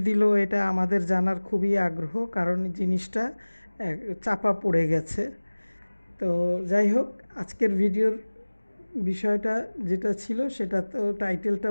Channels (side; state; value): both; inverted; correlation -1.00